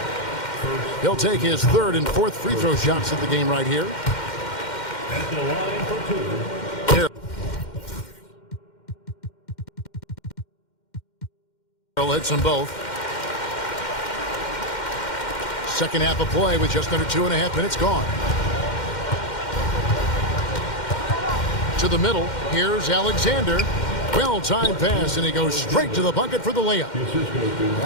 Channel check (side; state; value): right; late; 2.1 ms